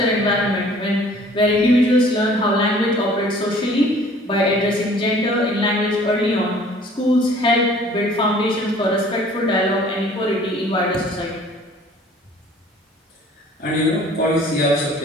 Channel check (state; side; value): normal; both; correlation 0.52